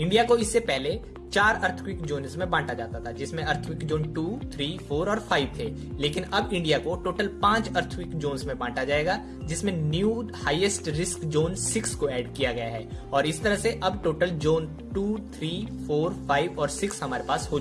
को इससे पहले 4 अर्थक्वेक जोन्स में बांटा जाता था जिसमें अर्थक्वेक जोन 2, 3, 4 और 5 थे, लेकिन अब इंडिया को टोटल 5 अर्थक्वेक जोन्स में बांटा जाएगा जिसमें न्यू हाईएस्ट रिस्क जोन 6 को ऐड किया गया है और इस तरह से अब टोटल जोन 2, 3, 4, 5 और 6 हमारे पास हो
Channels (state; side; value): identical; both; correlation 1.00